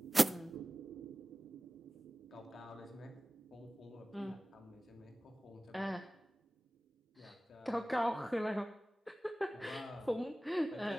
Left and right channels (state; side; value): normal; both; correlation 0.97